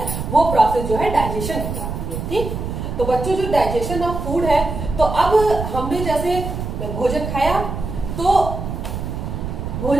वो प्रोसेस जो है डाइजेशन कहलाती है। ठीक? तो बच्चों, जो डाइजेशन ऑफ फूड है, तो अब हमने जैसे भोजन खाया तो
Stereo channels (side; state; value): right; noise; rumble, 5 dB below the sound